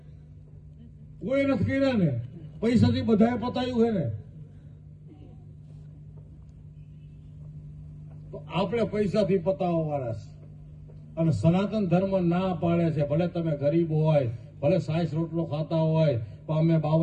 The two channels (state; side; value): identical; both; correlation 1.00